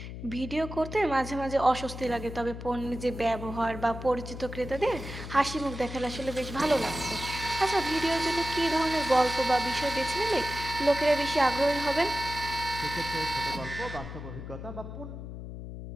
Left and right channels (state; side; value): noise; left; hum, 9 dB below the sound